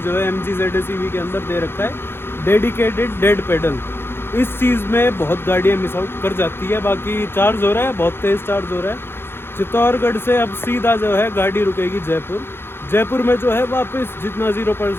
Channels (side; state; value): right; late; 0.11 ms